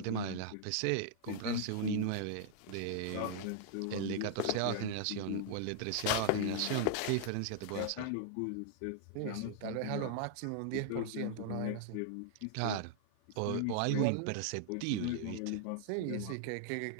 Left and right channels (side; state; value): both; different; correlation -0.01